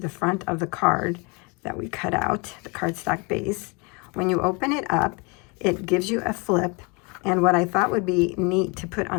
front of the card that we cut out, the cardstock base, when you open it up, it gives you a flip. And what I thought would be neat to put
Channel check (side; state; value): right; quieter; 30.4 dB